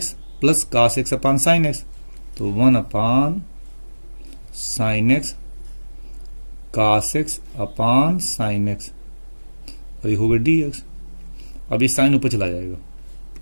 plus cos x upon sine x, तो 1 upon sine x cos x upon sine x, और लिखोगे dx। अब ये साइन ऊपर चला जाएगा,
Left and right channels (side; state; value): both; inverted; correlation -1.00